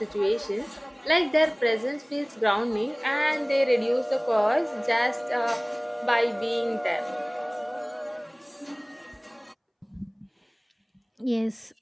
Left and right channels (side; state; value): both; identical; correlation 1.00